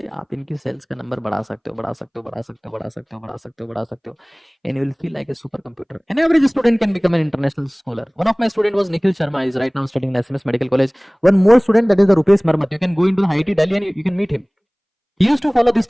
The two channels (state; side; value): identical; both; correlation 1.00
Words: आप इनकी सेल्स का नंबर बढ़ा सकते हो, बढ़ा सकते हो, बढ़ा सकते हो, बढ़ा सकते हो, बढ़ा सकते हो, बढ़ा सकते हो, and you will feel like a super computer. An average student can become an international scholar. One of my student was Nikhil Sharma. He is right now studying in SMS Medical College. One more student, that is the Rupesh Marmat. You can go into the IIT Delhi and you can meet him. He used to follow this